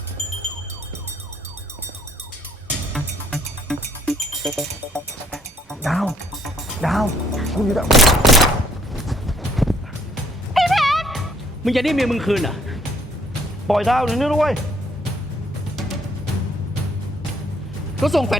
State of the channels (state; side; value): normal; both; correlation 0.64